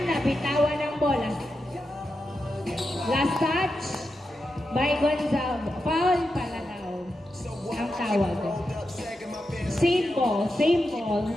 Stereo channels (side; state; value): both; normal; correlation 0.88